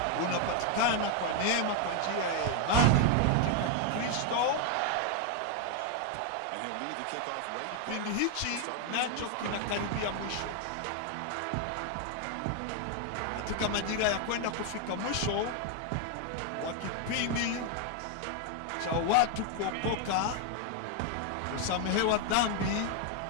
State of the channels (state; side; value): different; both; correlation 0.00